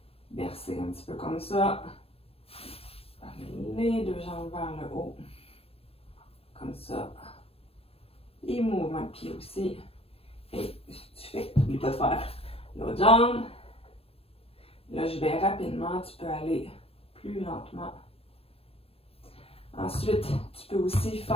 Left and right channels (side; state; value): right; late; 0.28 ms